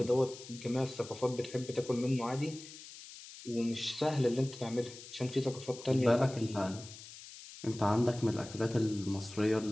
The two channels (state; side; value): noise; left; hiss, 15 dB below the sound